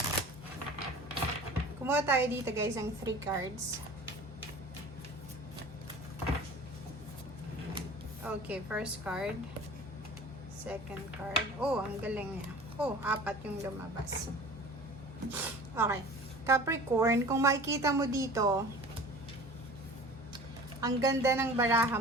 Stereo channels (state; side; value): normal; both; correlation 0.41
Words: Kumuha tayo dito guys ng 3 cards. Okay, first card. Second card. Oh, ang galing niya. Oh, 4 yung lumabas. Okay. Capricorn, kung makikita mo dito, ang ganda ng baraha